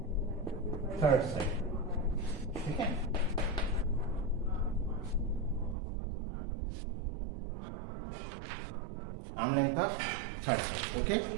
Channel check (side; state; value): left; drops out; at 5.8 s